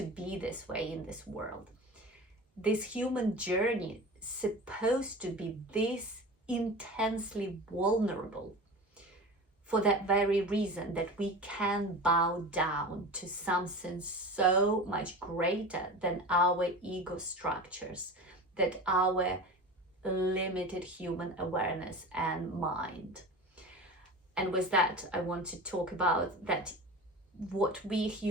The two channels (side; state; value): both; normal; correlation 0.32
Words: be this way in this world. This human journey is supposed to be this intensely vulnerable for that very reason, that we can bow down to something so much greater than our ego structures, that our limited human awareness and mind. And with that, I want to talk about that what we